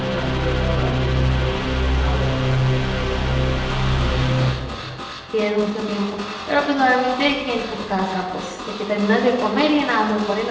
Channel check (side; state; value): both; identical; correlation 1.00